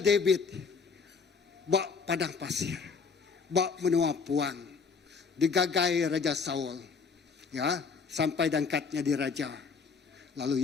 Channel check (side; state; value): right; quieter; 5.3 dB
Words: David. Bak padang pasir. Bak menua puang. Digagai Raja Saul. Ya, sampai dangkatnya di raja.